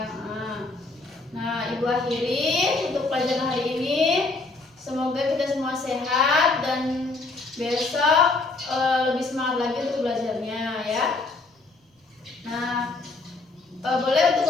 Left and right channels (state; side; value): quieter; right; 3.6 dB